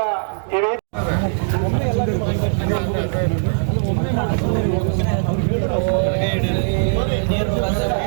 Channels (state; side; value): silent; left; digital silence